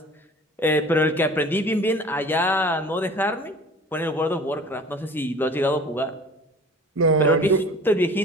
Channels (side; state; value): both; normal; correlation 0.44